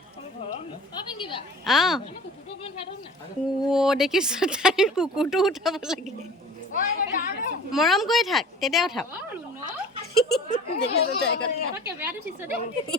দেখিছ তাই কুকুৰটো উঠাব লাগে মৰম কৰি থাক তেতিয়া উঠাব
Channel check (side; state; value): both; normal; correlation 0.43